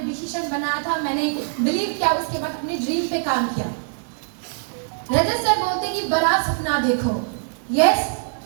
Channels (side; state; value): left; silent; digital silence